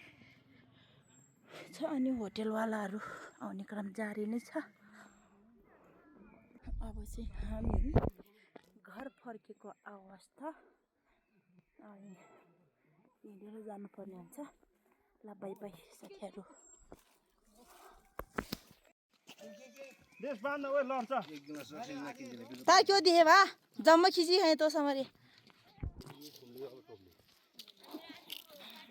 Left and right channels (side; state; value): both; identical; correlation 1.00